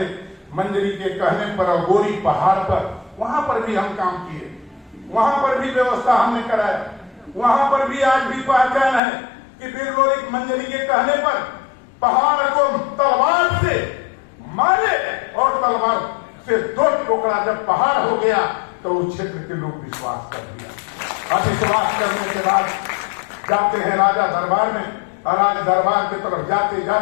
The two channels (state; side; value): drops out; right; at 9.0 s